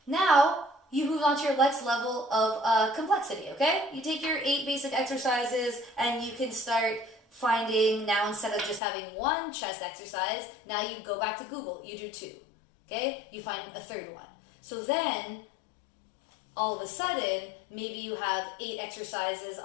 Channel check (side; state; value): right; drops out; at 8.8 s